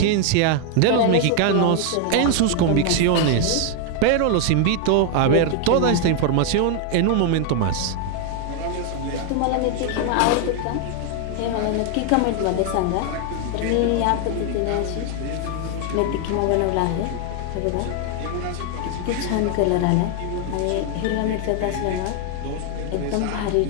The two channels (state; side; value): different; both; correlation 0.01